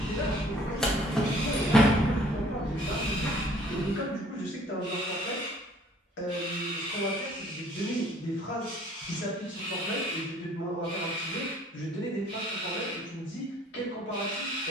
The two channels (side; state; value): both; normal; correlation 0.56